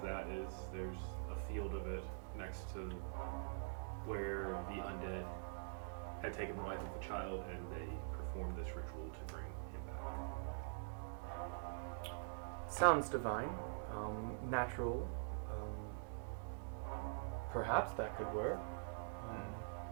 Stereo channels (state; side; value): silent; left; digital silence